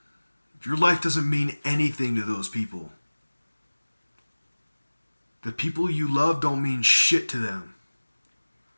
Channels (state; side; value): inverted; both; correlation -1.00